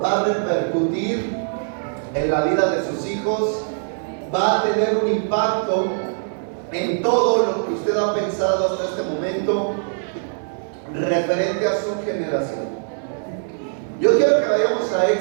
va a repercutir en la vida de sus hijos, va a tener un impacto en todo lo que usted ha pensado hasta este momento referente a su generación. Yo quiero que vayamos a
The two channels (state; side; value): silent; left; 64 dB below the other